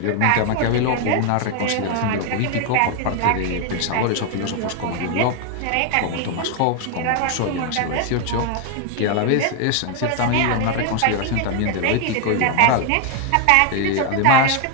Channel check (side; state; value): both; different; correlation 0.01